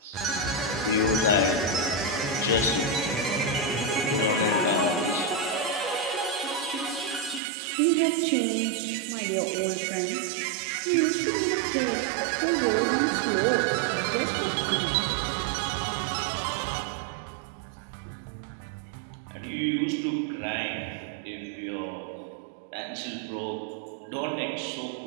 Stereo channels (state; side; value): drops out; left; at 7.4 s